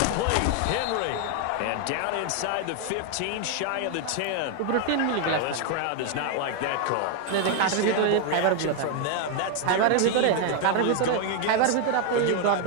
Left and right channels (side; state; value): both; different; correlation 0.00